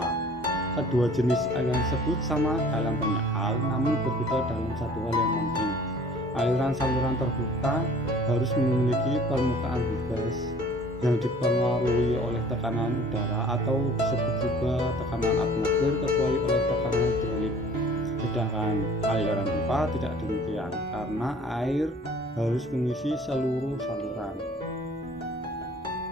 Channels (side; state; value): both; normal; correlation 0.50